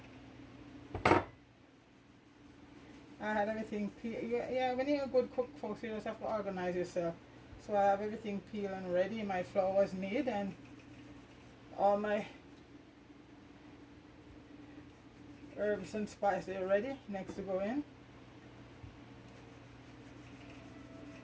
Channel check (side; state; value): both; identical; correlation 1.00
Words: I had everything peeled. Yeah, when you're a good cook, folks, you just have to organize yourself. So I have everything peeled and ready. My flour was made, and all my herbs and spices are ready, next to go in.